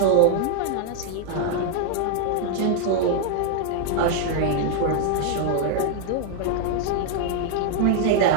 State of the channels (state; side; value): different; both; correlation 0.00